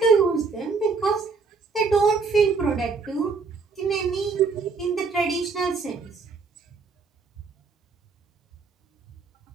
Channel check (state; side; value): quieter; left; 4.7 dB